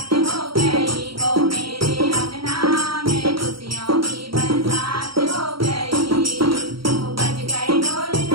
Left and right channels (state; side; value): late; left; 0.74 ms